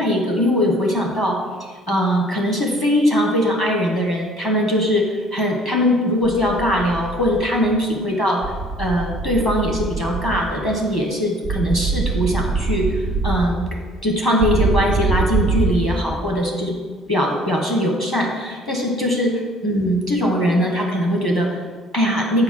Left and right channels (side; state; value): both; normal; correlation 0.55